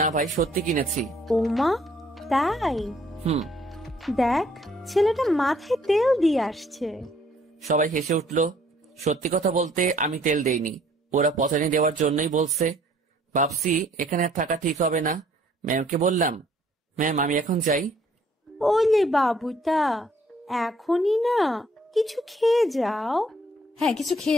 ভাই, সত্যি কিনেছি। ওমা, তাই? হুম। দেখ, ছেলেটা মাথায় তেল দিয়ে আসছে। সবাই হেসে উঠলো। সত্যি কথা বলতে আমি তেল দেইনি, ওরা পচানি দেওয়ার জন্যই বলছে। ভাবছি এখানে আর থাকা ঠিক হবে না। ম্যামকে বললাম, ম্যাম আমি এখন যাই? ওলে বাবুটা, এখনই না, কিছু খেয়ে যাও। হ্যাঁ, কিছু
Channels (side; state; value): both; normal; correlation 0.62